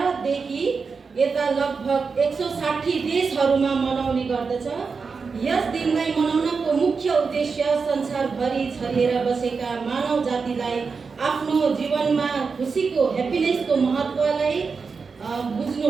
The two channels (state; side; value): quieter; left; 5.0 dB